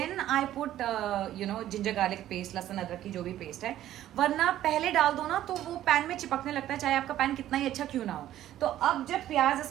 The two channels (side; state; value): left; quieter; 12.8 dB